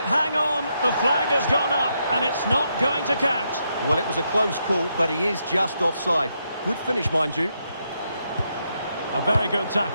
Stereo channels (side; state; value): both; inverted; correlation -0.80